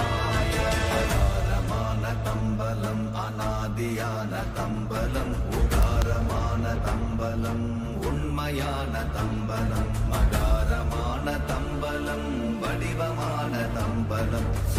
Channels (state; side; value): identical; both; correlation 1.00